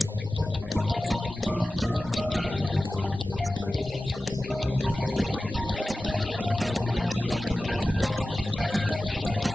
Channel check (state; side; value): normal; both; correlation 0.95